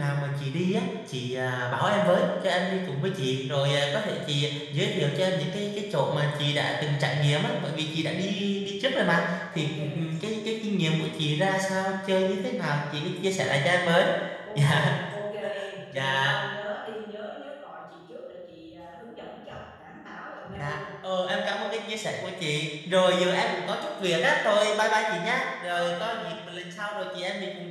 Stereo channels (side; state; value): both; identical; correlation 1.00